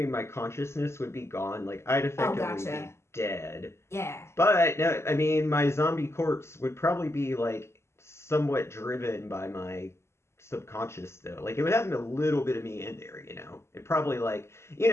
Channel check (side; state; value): right; late; 0.13 ms